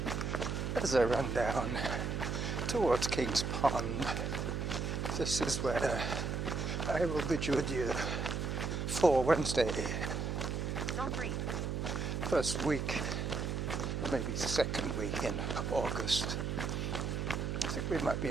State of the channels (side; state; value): right; noise; hum, 1 dB below the sound